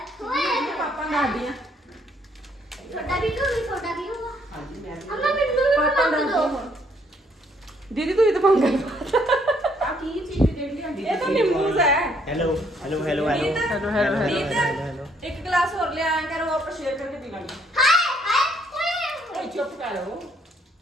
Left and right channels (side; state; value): both; normal; correlation 0.67